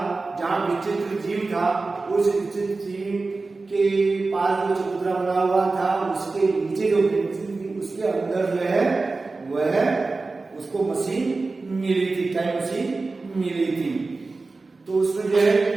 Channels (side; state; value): left; quieter; 3.7 dB